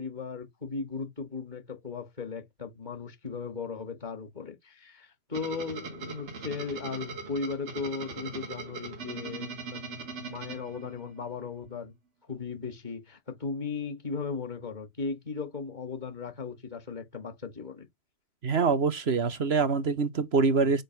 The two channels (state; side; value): late; left; 3.0 ms